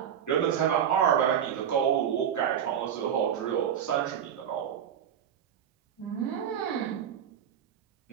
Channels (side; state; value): left; quieter; 8.9 dB